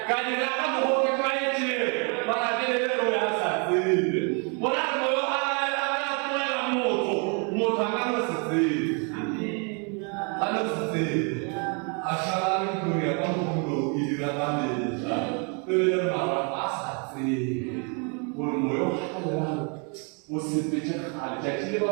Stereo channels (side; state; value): left; quieter; 36.6 dB